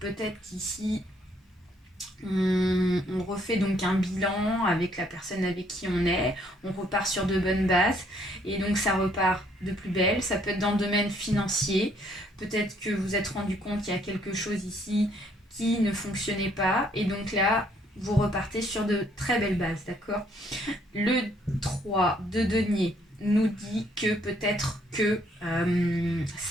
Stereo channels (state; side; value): normal; both; correlation 0.67